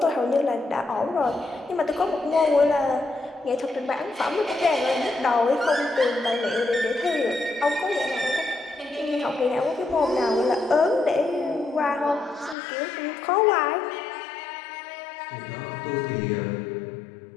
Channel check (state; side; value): drops out; right; at 12.6 s